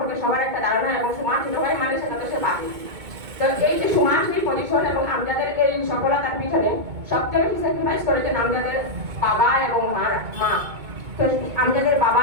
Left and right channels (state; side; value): late; left; 2.2 ms